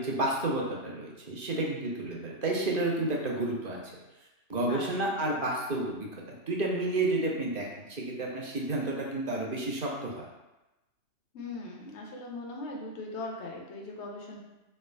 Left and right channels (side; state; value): right; late; 2.5 ms